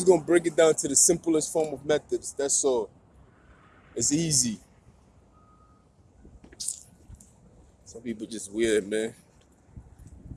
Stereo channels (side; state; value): both; identical; correlation 1.00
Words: gonna break it down to the simplest form of methods. That's all. It's easy. Some people just weird, man.